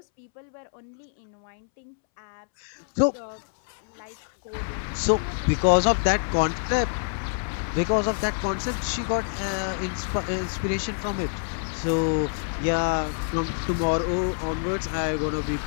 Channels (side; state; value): right; silent; 61 dB below the other